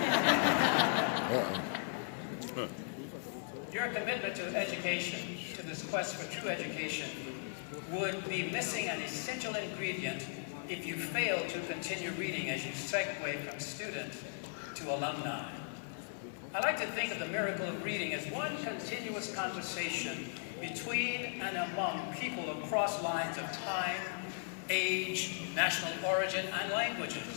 2. Your commitment to education, to this quest for true education, would be missing an essential ingredient if you fail to continue reading as you segue from student to alumni. I like to think of the miracle of reading as one continuous conversation between and among people across lines of time, age, national origin, and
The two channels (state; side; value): silent; right; 53 dB below the other